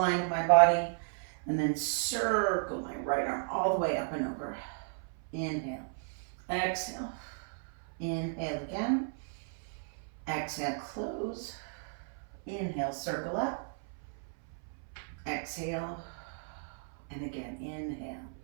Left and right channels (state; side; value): silent; left; 55 dB below the other